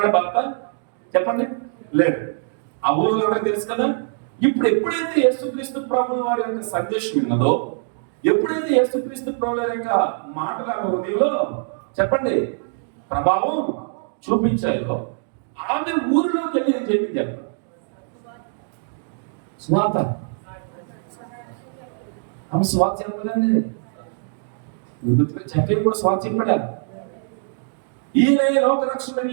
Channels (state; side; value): silent; left; digital silence